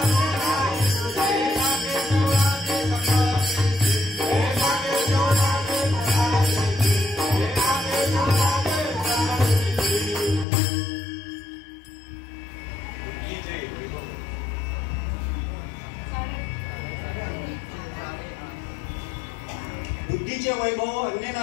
बुद्धीचे वैभव अन्य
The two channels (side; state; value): right; drops out; at 10.5 s